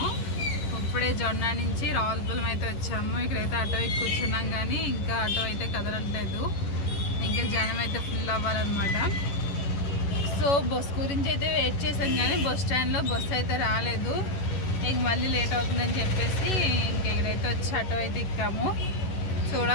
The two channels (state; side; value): late; right; 11 ms